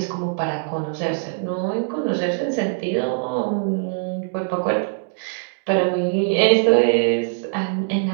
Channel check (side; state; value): left; silent; digital silence